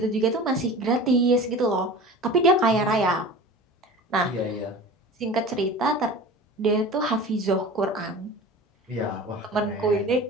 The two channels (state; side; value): normal; both; correlation 0.37